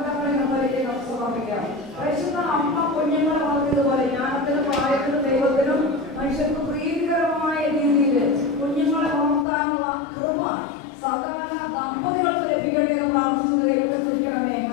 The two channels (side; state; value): right; drops out; at 9.5 s